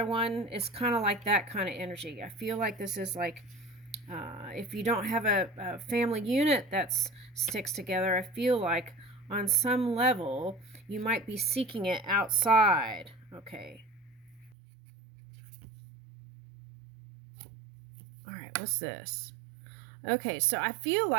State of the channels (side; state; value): left; drops out; at 14.6 s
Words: one. It's kind of like that kind of energy. I feel like this is like if you don't have a family unit that sticks together, I feel like on some level you might be seeking it outside. Okay. All right, what's this? Okay, so I feel